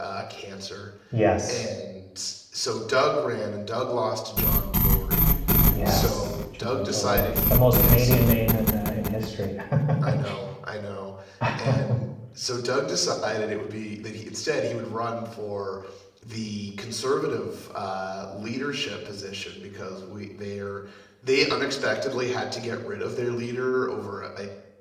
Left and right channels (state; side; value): identical; both; correlation 1.00